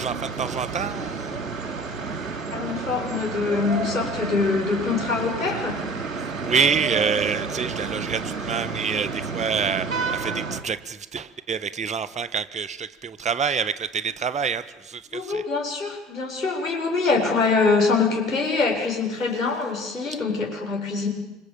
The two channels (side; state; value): both; normal; correlation 0.44